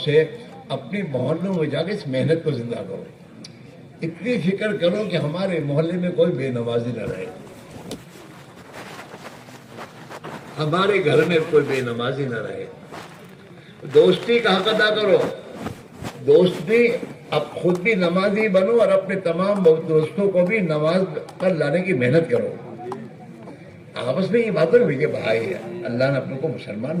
اپنے محلوں میں جا کے اس محنت کو زندہ کرو. اتنی فکر کرو کہ ہمارے محلے میں کوئی بے نمازی نہ رہے, ہمارے گھر میں کوئی بے نمازی نہ رہے. دوستی کا حق ادا کرو. دوستی, اب خود بھی نمازی بنو اور اپنے تمام دوستوں کو بھی نماز پر لانے کی محنت کرو. آپس میں یہ باتیں ہوئی کہ بھائی اللہ نے اپنے کو مسلمان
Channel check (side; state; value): both; identical; correlation 1.00